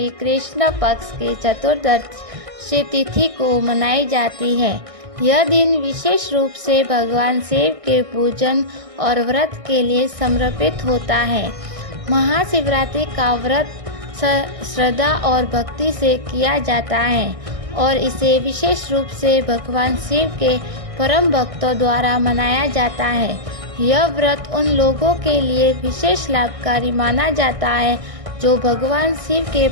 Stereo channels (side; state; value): left; late; 1.6 ms